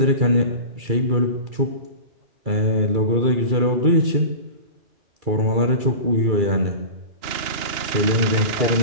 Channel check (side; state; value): left; late; 2.9 ms